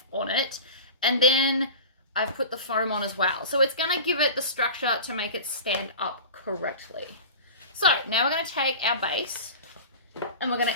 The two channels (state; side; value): inverted; both; correlation -0.34